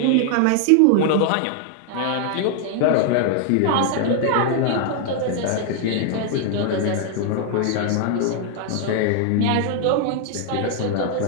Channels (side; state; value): both; different; correlation 0.00